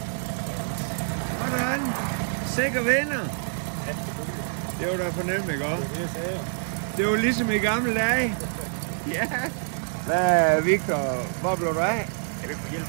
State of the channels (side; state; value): left; silent; digital silence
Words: Sådan. Sikker vinder. Det var da fornemt, ikke også? Det var ligesom i gamle dage. Ja. Hvad, Victor, hvor blev du af? Jeg vil hjælpe